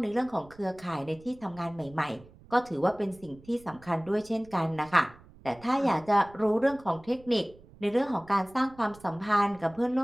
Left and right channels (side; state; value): right; noise; rumble, 23 dB below the sound